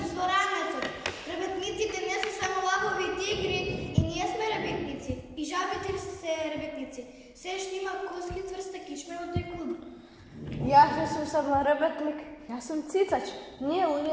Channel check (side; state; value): both; identical; correlation 1.00